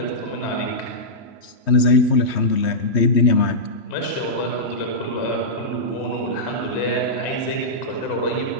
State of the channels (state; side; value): late; right; 3.2 ms